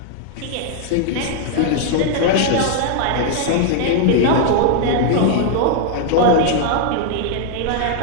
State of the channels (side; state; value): both; different; correlation 0.00